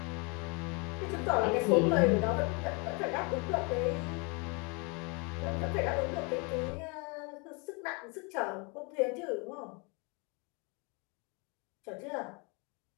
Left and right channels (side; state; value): right; quieter; 31.7 dB